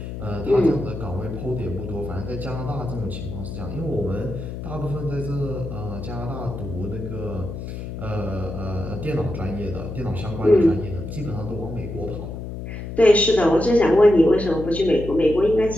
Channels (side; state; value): left; noise; hum, 8 dB below the sound